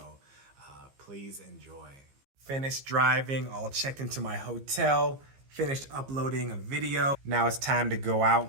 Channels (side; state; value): left; late; 15 ms